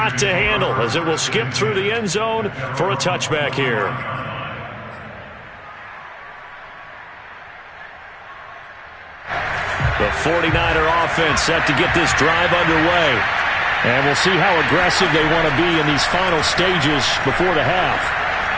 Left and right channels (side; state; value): both; identical; correlation 1.00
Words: to handle as it will skip through the end zone for a touchback here. The 49er offense set to get this drive underway. And we'll see how aggressive they want to be in these final stages before the half.